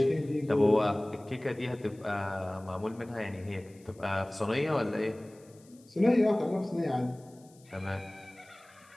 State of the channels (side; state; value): left; noise; hiss, 28 dB below the sound